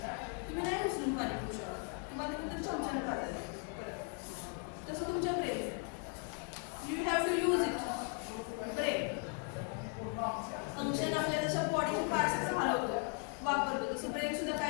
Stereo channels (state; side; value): quieter; right; 36.2 dB